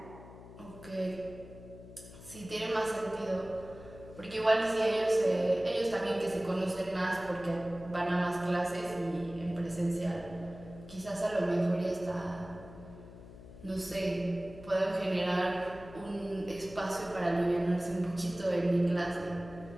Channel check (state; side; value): noise; left; hum, 16 dB below the sound